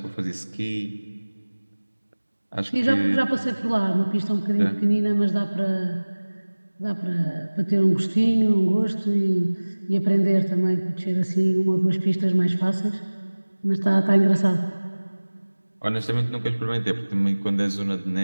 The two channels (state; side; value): inverted; both; correlation -1.00